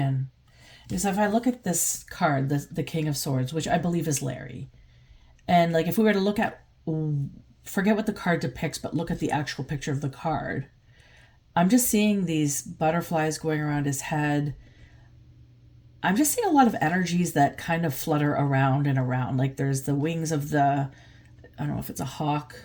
Because if I look at this card, the King of Swords, which I believe is Larry, and like if we were to look at, forget what the card depicts, but look at the actual picture of the card, I'm just seeing these butterflies going around his head. I'm just seeing a lot of energies that kind of flutter around and around. Like there's the wings of the, I don't know if it's a hawk,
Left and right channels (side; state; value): both; identical; correlation 1.00